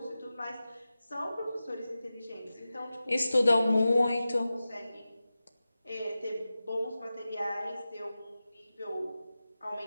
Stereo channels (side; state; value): both; inverted; correlation -0.94